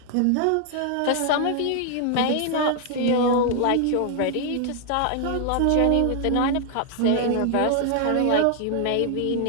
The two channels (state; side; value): different; both; correlation 0.00